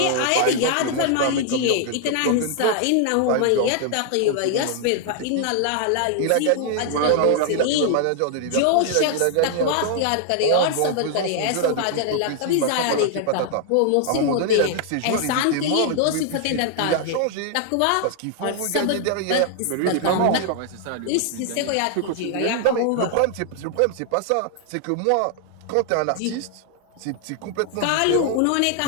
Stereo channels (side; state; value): both; different; correlation 0.00